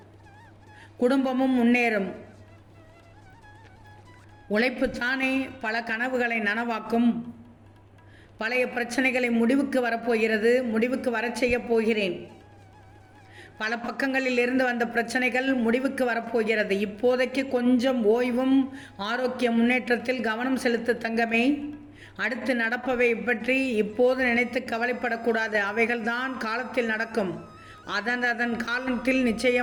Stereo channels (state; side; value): identical; both; correlation 1.00